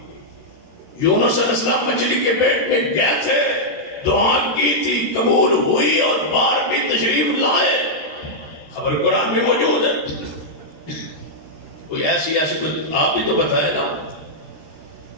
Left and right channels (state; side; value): late; right; 13 ms